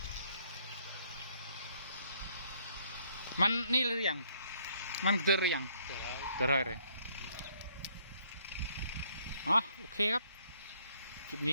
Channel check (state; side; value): inverted; both; correlation -0.66